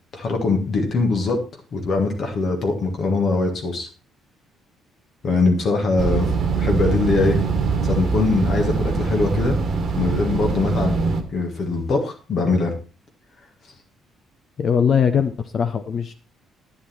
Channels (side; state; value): both; normal; correlation 0.72